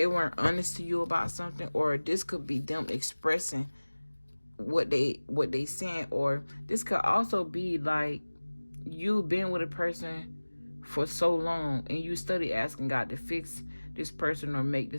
weren't honest to you about something, or this could be them expressing what they saying, or this could also be like you've been with a person for so long and you study asking God to fix this person or make the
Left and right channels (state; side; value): inverted; both; correlation -1.00